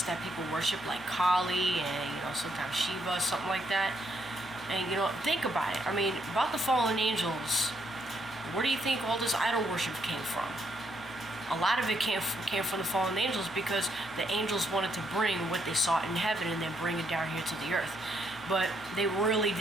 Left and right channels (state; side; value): normal; both; correlation 0.74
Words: that people worship, like Kali and, you know, sometimes Shiva, something like that. And, you know, think about it. I mean, about the fallen angels, where do you think all this idol worship came from? A lot of it came from the fallen angels, because the angels wanted to bring what they saw in heaven and then bring it down here to the earth. But they really